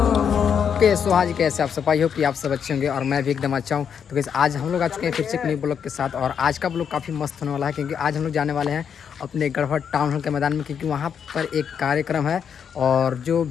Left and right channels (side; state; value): right; quieter; 7.6 dB